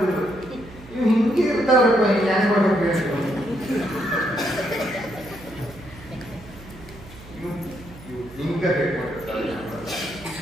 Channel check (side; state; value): right; noise; hum, 18 dB below the sound